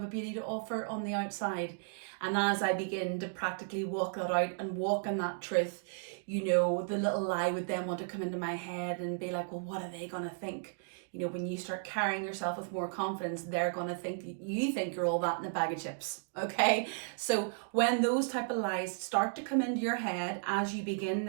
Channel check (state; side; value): silent; left; digital silence